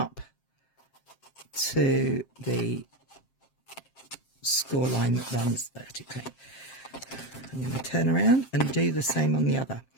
to the score line that runs vertically. I'm going to turn around and do the same on the other.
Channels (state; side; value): late; right; 7.5 ms